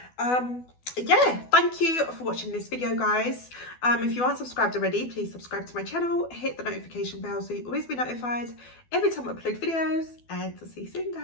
Yeah, thank you for watching this video, guys. If you aren't subscribed already, please subscribe to my channel, hit the notification bell so you always be notified every time I upload videos, and I'll see you soon,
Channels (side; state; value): right; late; 12 ms